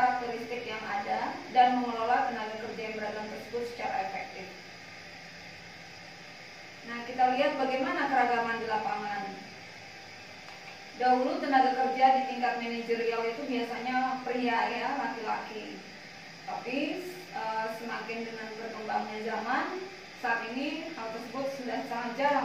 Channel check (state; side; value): identical; both; correlation 1.00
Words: yang ada dan mengelola tenaga kerja yang beragam tersebut secara efektif. Nah, kita lihat bagaimana keragaman di lapangan. Dahulu tenaga kerja di tingkat manajerial itu biasanya pria ya, laki-laki. Tapi semakin dengan berkembangnya zaman, saat ini hal tersebut sudah sangat